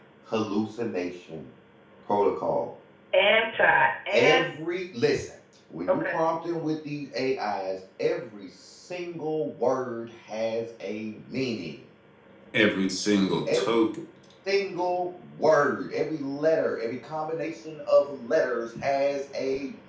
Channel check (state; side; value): identical; both; correlation 1.00